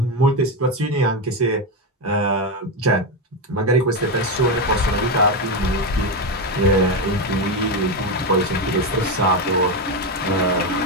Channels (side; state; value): both; normal; correlation 0.11